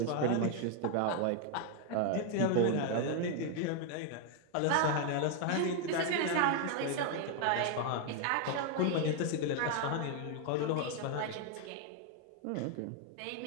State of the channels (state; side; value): different; both; correlation 0.01